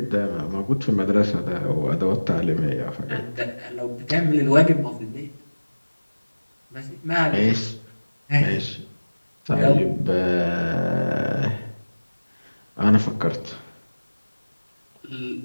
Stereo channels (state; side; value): inverted; both; correlation -1.00